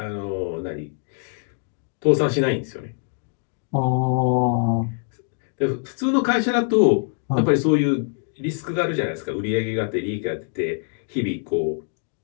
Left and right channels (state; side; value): silent; right; 60 dB below the other